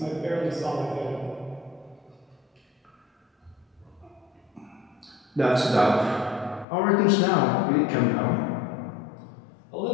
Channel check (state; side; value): drops out; right; at 6.7 s